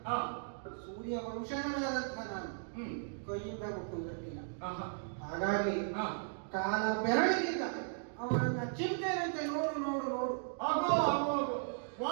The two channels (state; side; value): silent; left; digital silence